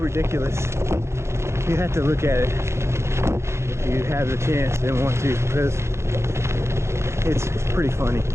You have to look at it if you have the chance and want to, because it's pretty funny.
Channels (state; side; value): late; left; 0.13 ms